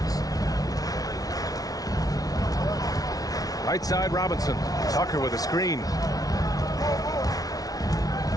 Right side, Robinson. Tucker with a screen.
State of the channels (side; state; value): right; late; 0.18 ms